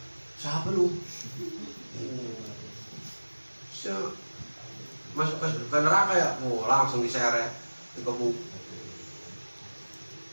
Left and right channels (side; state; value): both; inverted; correlation -1.00